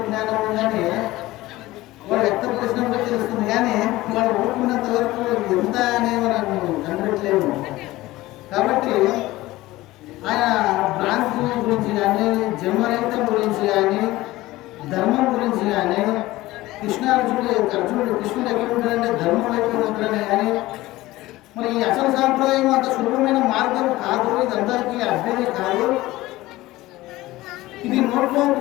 ఉందని వాళ్ళు వ్యక్తపరిచినప్పుడు తెలుస్తుంది, కానీ వాళ్ళు ఊరుకున్నంత వరకు ఎంత అనేది మనం కనిపెట్టలేము. కాబట్టి ఆయన భ్రాంతి గురించి కానీ, జన్మరహితం గురించి కానీ, ధర్మం గురించి కానీ, కృష్ణుడు ఎక్కడ ఉంటాడంటే ధర్మం వైపు ఉంటాడనే, కానీ మరి ఈ అసలు సాంప్రదాయం అంత సులభమైన మార్గం కాదు, ఇది అందరికీ అభ్యర్థి కాదు. ఇది నోట్లో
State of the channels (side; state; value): right; quieter; 17.9 dB